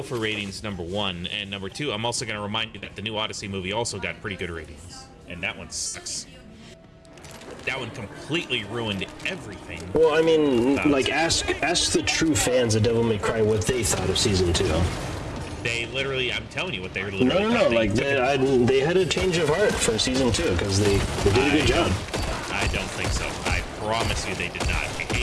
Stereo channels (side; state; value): both; identical; correlation 1.00